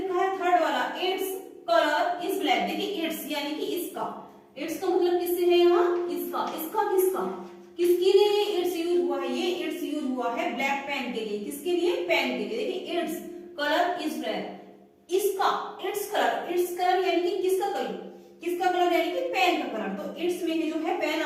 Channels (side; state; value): both; identical; correlation 1.00